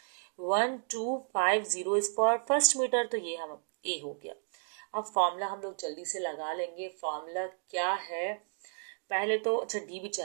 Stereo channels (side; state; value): left; silent; digital silence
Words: 1250 इज फॉर फर्स्ट मीटर, तो ये हम ए हो गया। अब फॉर्मूला हम लोग जल्दी से लगा लेंगे। फॉर्मूला क्या है? पहले तो अच्छा डी भी